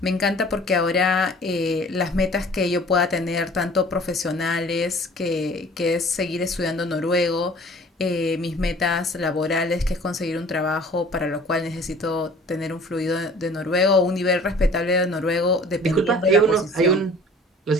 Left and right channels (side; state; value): both; normal; correlation 0.49